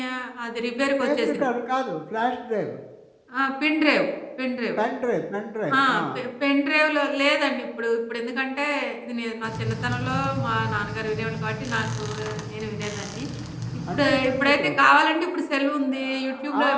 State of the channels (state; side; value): identical; both; correlation 1.00